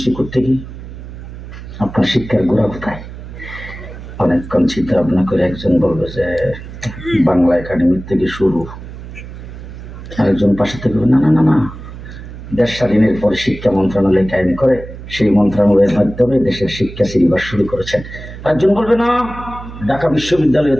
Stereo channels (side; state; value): right; noise; hum, 13 dB below the sound